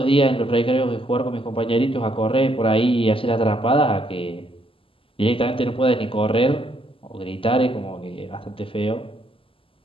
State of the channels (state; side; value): late; right; 0.26 ms